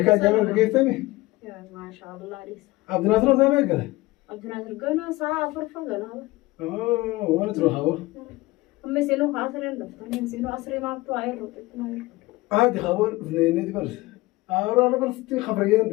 كان جامع بقيتني. ما شاء الله ليس. عبد الناصر زمان قال. عبد الناصر قلنا ساعة فرفة قلنا. وين تروح هو؟ هم سينو خاسرين دفتني سينو أسري ما بتوعي روتنا. عادي خبر اثنين برس. أنا برس تي خبرية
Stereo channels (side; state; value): right; quieter; 20.1 dB